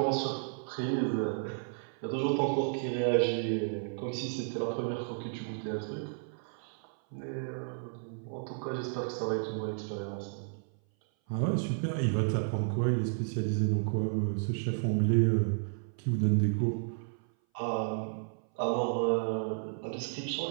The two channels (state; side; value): silent; left; 56 dB below the other